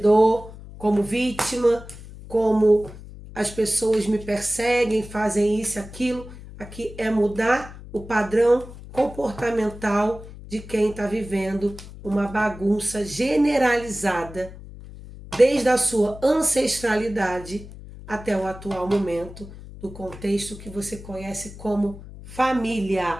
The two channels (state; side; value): noise; left; hum, 15 dB below the sound